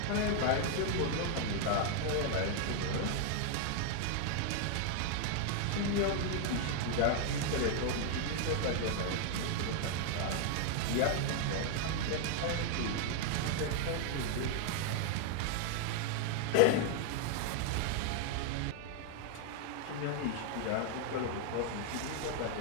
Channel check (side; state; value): both; different; correlation 0.00